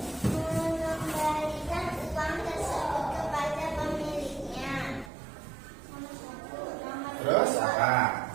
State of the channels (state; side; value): drops out; left; at 5.1 s